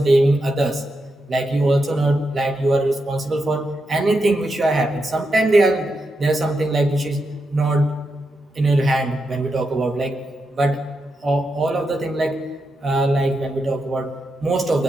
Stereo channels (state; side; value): normal; both; correlation 0.86